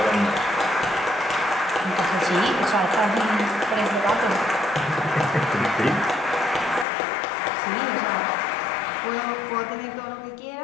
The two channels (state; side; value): drops out; right; at 6.9 s